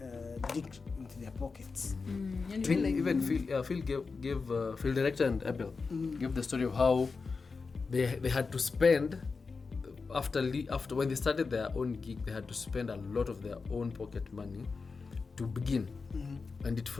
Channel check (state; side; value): quieter; right; 4.6 dB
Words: dig into their pockets. And Phil, like, even Phil gave Phil director and Abel gave the story of how they had to spend after when they started their own gig, they had to spend a lot of their own pocket money to begin, and it